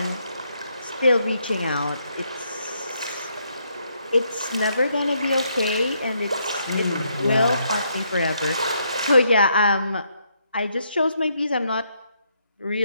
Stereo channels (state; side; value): inverted; both; correlation -0.74